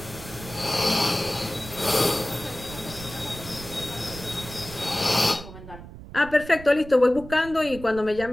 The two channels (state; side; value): noise; right; rumble, 15 dB below the sound